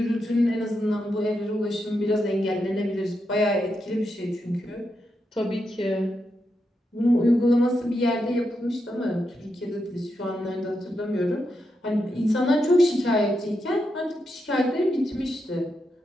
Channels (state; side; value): normal; both; correlation 0.84